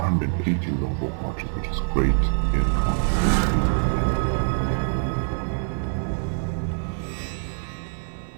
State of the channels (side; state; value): left; silent; 60 dB below the other